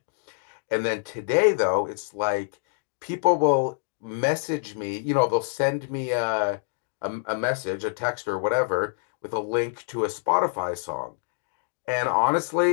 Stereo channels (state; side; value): silent; right; digital silence